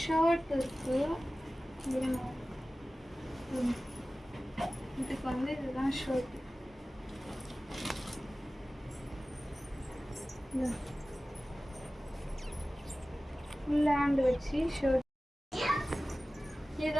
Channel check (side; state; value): both; normal; correlation 0.96